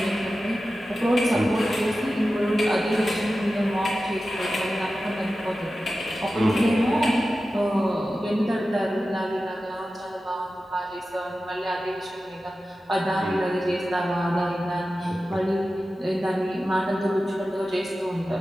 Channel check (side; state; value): both; normal; correlation 0.94